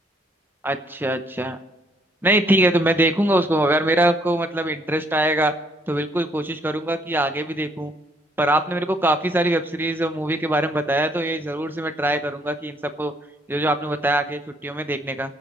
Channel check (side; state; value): both; normal; correlation 0.67